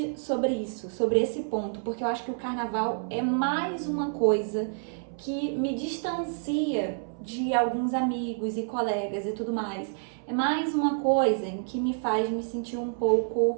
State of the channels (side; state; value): left; silent; 59 dB below the other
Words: sobre isso, sobre esse ponto, porque eu acho que o carnaval é mais uma coisa que me distancia de alguns amigos e colegas e tudo mais. É mais uma coisa que me faz me sentir um